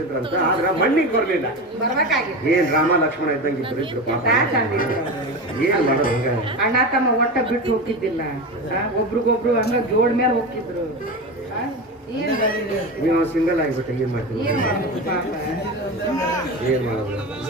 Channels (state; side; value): normal; both; correlation 0.24